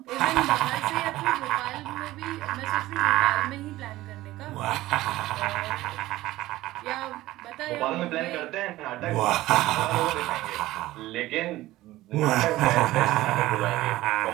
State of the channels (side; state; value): left; quieter; 16.8 dB